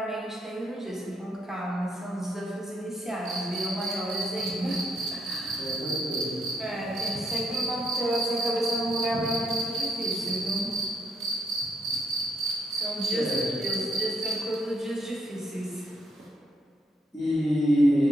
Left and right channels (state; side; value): normal; both; correlation 0.75